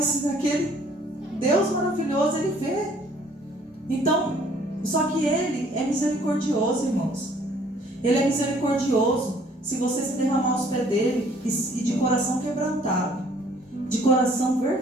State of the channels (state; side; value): normal; both; correlation 0.59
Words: aquele Deus maravilhoso, Ele vê. Então, só que Ele é misericordioso, irmãos. Ele é misericordioso. Se você se derramar aos pés dele e de coração quebrantado, de coração